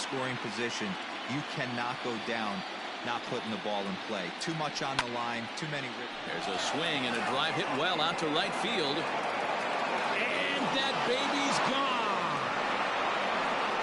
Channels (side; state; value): both; identical; correlation 1.00